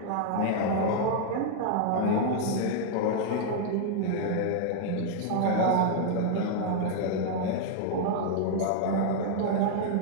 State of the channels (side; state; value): both; different; correlation -0.01